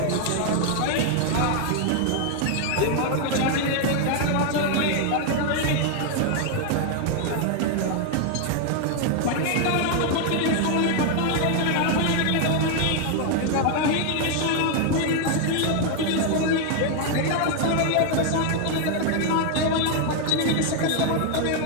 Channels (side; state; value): both; different; correlation 0.01